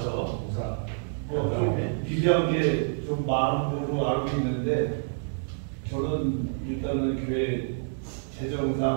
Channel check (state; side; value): silent; left; digital silence